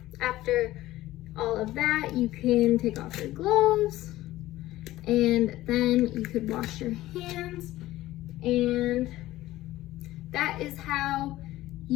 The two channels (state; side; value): quieter; right; 16.1 dB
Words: after all of that, you can take off your gloves, and then you could wash your hands, and that is how